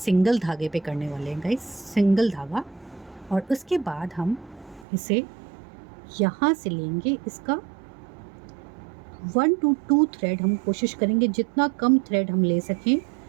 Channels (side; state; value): left; drops out; at 4.9 s